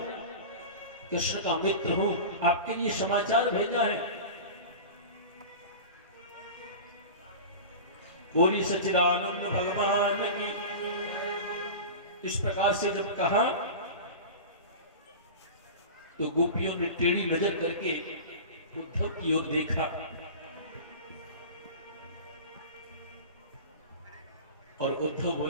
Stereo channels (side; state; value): both; inverted; correlation -0.31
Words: कृष्ण का मित्र हूं, आपके लिए समाचार भेजा है। बोली सच्चिदानंद भगवान की। इस प्रकार से जब कहा तो गोपियों ने टेढ़ी नजर करके उद्धव की ओर देखा और उद्धव